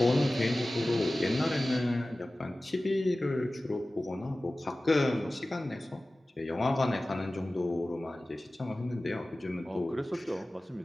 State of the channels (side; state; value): both; normal; correlation 0.97